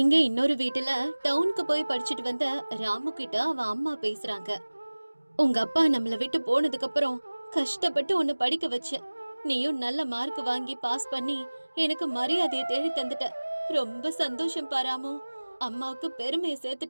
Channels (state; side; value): inverted; both; correlation -1.00